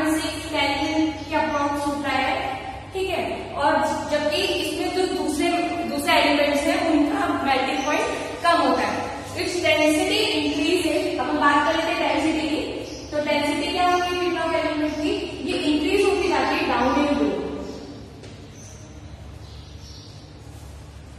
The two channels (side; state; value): both; identical; correlation 1.00